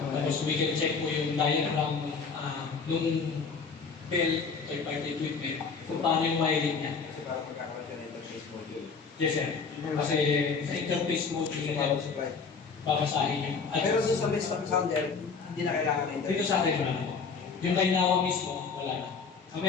we can check po yung diagram nung bell, third-party equipment, kung paano yung wiring niya. Kasi parang magkakaroon siya ng interface module. Yes, sir. Kasi sa interface module Kasi niya, parang supply. babasahin yung Pero doon sa base sounder, hindi na kailangan ng dito interface. sa atin, wala na po. Yung kay Nawa mismo, wala na.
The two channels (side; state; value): right; quieter; 5.2 dB